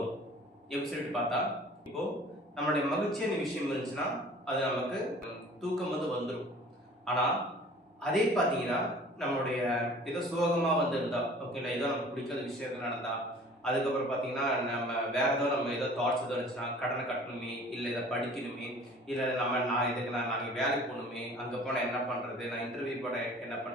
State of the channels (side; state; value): both; normal; correlation 0.48